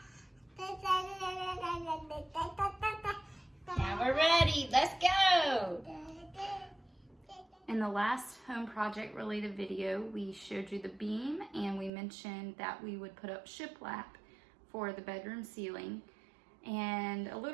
we're ready. Let's go. In the last home project related video, we showed you the beam and we mentioned that we would put up shiplap for the bedroom ceiling. And a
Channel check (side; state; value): left; drops out; at 11.9 s